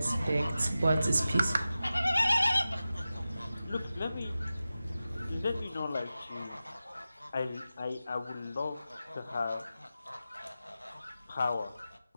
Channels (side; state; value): both; inverted; correlation -0.94